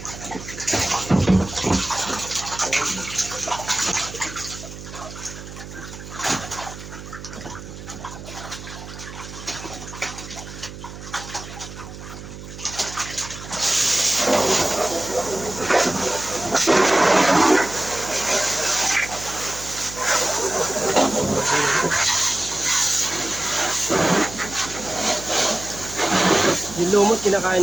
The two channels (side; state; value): right; noise; hum, 13 dB below the sound